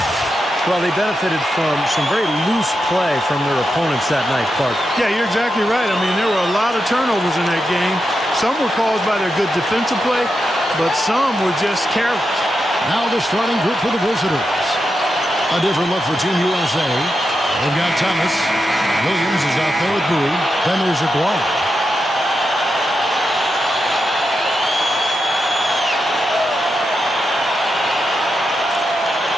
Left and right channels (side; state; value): both; normal; correlation 0.87